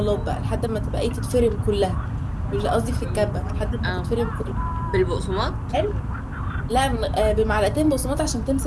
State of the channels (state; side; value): identical; both; correlation 1.00